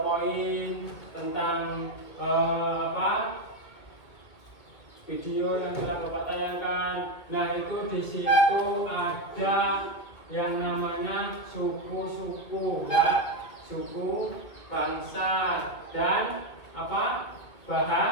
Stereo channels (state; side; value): late; right; 2.2 ms